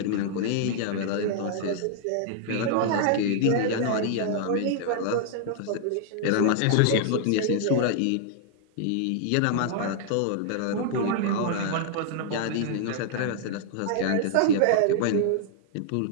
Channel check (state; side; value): different; both; correlation -0.01